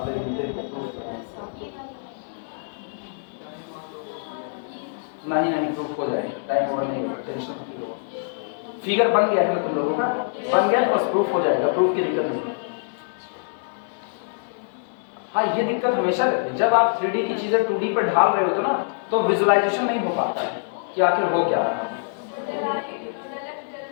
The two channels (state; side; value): silent; right; digital silence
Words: घंटे का प्रूफ नहीं प्रूफ हो जाएगा, टाइम ओवर नहीं होगा, टेंशन मत लो। फिगर बन गया है ना तुम लोगों का, बन गया तो बस प्रूफ हो जाएगा, प्रूफ की दिक्कत नहीं है। हाँ ये दिक्कत हमेशा रहती है जब आप 3D की चीजें 2D पर ढाल रहे होते ना, तो विजुअलाइजेशन नहीं हो पाता है कि आखिर हो क्या रहा है।